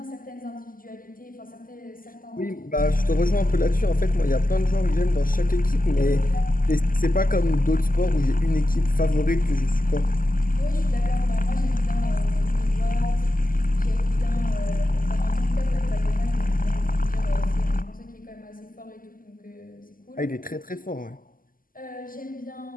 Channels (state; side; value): late; right; 0.41 ms